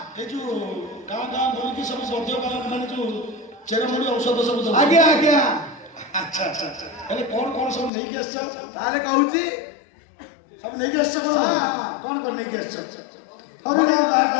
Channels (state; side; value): drops out; right; at 7.9 s